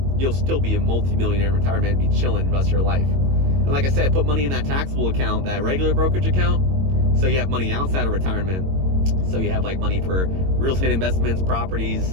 You'll still be a multi-millionaire in retirement and be chilling the rest of your life. And like I said, put money in that taxable account, that regular brokerage account, so you have money outside of retirement. So you have like money for real estate investments, properties.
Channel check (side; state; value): left; late; 22 ms